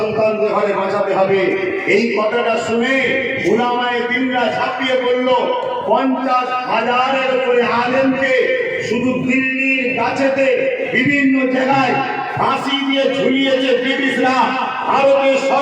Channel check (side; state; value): both; identical; correlation 1.00